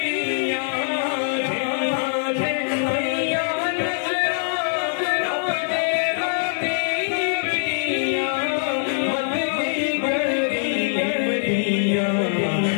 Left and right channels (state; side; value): silent; right; digital silence